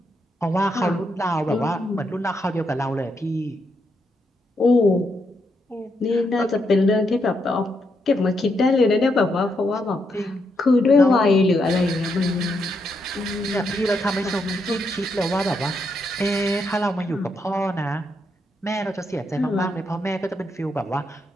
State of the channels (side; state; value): both; normal; correlation 0.80